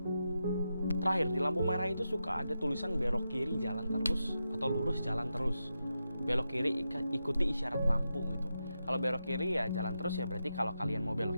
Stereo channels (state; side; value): inverted; both; correlation -0.88